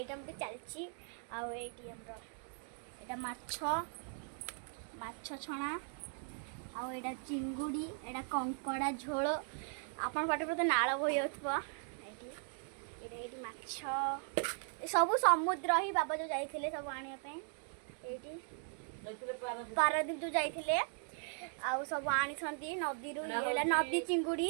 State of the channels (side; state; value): left; silent; 52 dB below the other